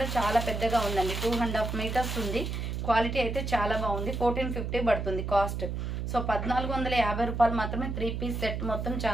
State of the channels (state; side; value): noise; right; hum, 3 dB below the sound